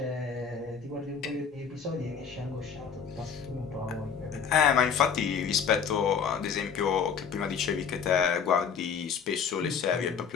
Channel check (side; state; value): right; quieter; 6.8 dB